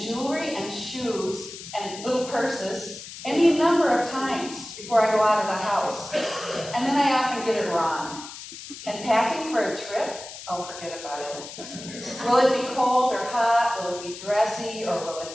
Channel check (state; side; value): noise; left; hiss, 13 dB below the sound